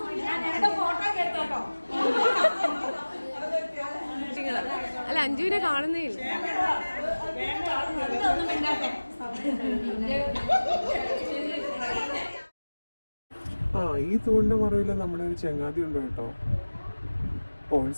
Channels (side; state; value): both; inverted; correlation -1.00